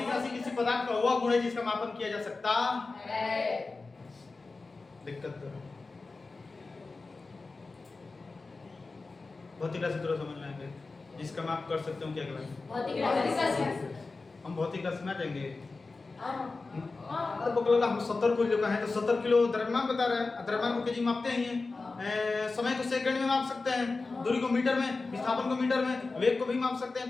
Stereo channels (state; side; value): quieter; right; 3.8 dB